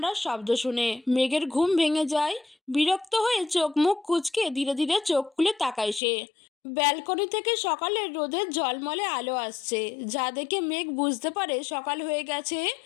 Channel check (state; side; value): drops out; right; at 6.0 s